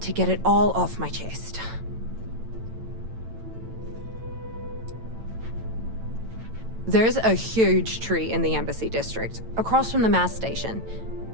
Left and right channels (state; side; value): late; left; 9.0 ms